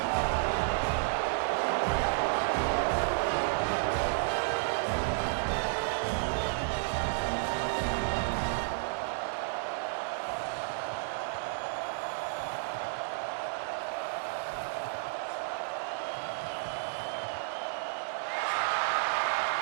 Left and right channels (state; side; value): silent; left; digital silence